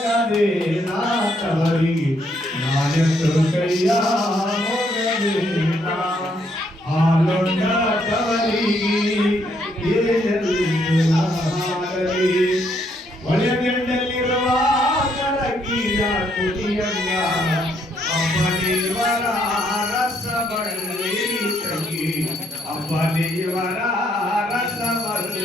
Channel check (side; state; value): both; normal; correlation 0.72